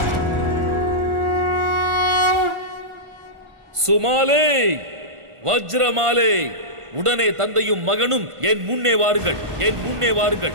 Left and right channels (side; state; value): left; late; 1.5 ms